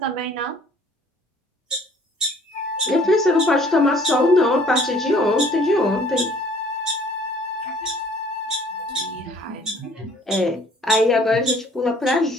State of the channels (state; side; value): normal; both; correlation 0.55